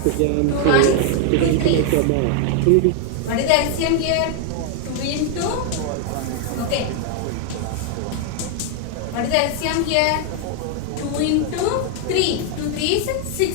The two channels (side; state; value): both; different; correlation 0.00